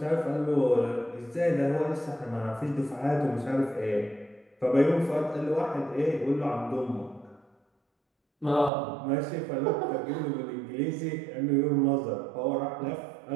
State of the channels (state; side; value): drops out; left; at 8.7 s